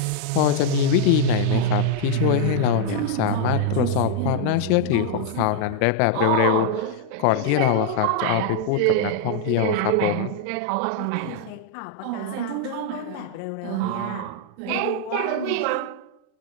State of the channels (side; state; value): both; different; correlation -0.01